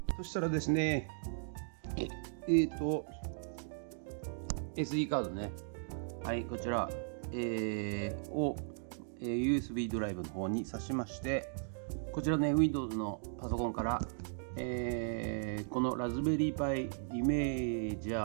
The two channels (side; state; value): left; silent; digital silence